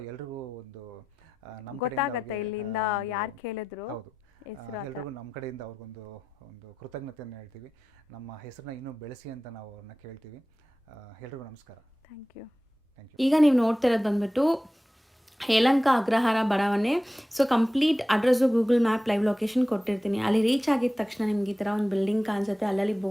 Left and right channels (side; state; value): both; normal; correlation 0.93